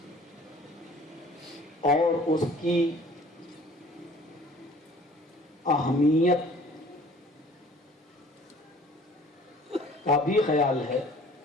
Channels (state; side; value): normal; both; correlation 0.51